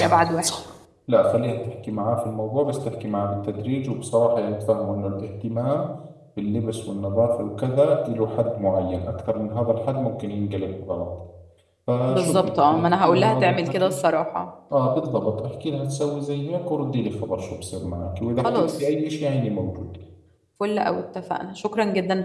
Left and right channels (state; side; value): identical; both; correlation 1.00